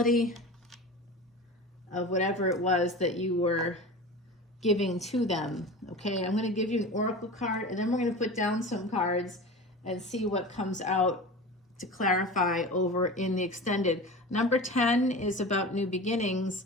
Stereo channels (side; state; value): both; normal; correlation 0.32